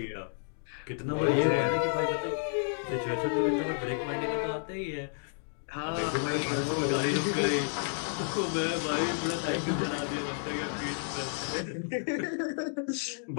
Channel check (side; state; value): right; silent; digital silence